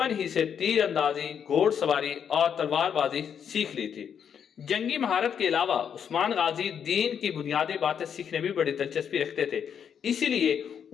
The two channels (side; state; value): right; quieter; 7.9 dB